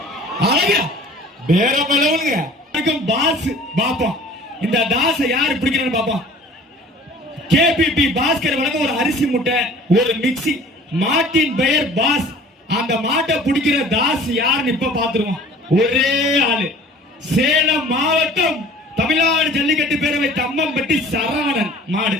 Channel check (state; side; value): normal; both; correlation 0.47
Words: அழகா பேரமளவுங்க பாஸ் பாப்போம் இந்த தாச யாரு பிடிக்கிறான்னு பாப்போம் கேபிபி பாஸ்கர் வழங்க ஒரு அரிசி முட்டை ஒரு மிக்சி மாட்டின் பெயர் பாஸ் அந்த மாட்டை பிடிக்கிற தாஸ் யாருன்னு இப்ப பாத்துருவோம் ஒரே ஆளு சேலம் மாவட்டம் தமிழ்நாடு ஜல்லிக்கட்டு பேரவை தம்மம்பட்டி சரவணன் மாடு